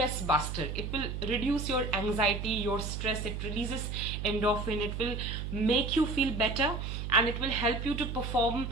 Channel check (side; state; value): right; noise; hum, 4 dB below the sound